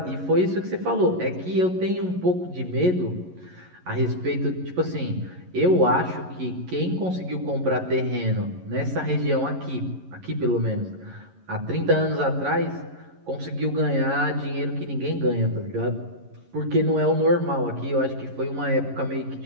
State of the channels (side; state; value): left; late; 11 ms